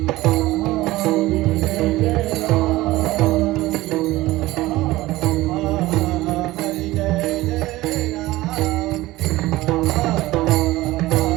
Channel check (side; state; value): left; quieter; 18.0 dB